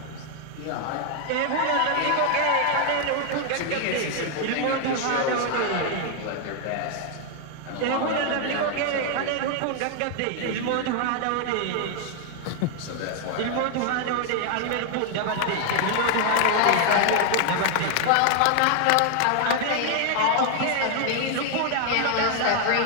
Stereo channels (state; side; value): different; both; correlation 0.00